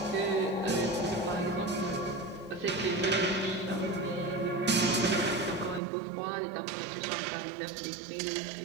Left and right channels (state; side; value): drops out; left; at 5.8 s